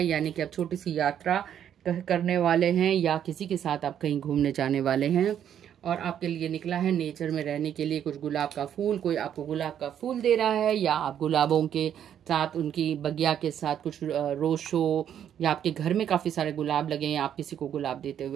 यानी कि आप छोटी सी यात्रा करने वाले हैं, या किसी के साथ आप कहीं घूमने जाने वाले हैं। और आपके लिए निकला है नेचर में रहने के लिए कुछ गुलाब का फूल, कोई आपको गुलाब का फूल दे रहा है, या आप गुलाबों के साथ, उनकी बगिया के साथ कुछ रोज शो, या आपके घर में काफ़ी सारे गुलाब लगे हैं, आप किसी को गुलाब देते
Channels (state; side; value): quieter; left; 9.6 dB